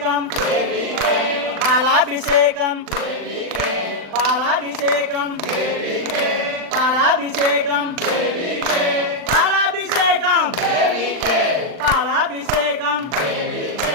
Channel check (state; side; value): late; left; 39 ms